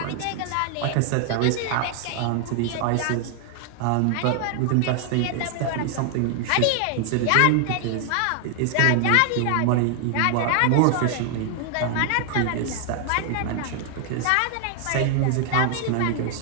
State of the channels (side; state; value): both; different; correlation 0.00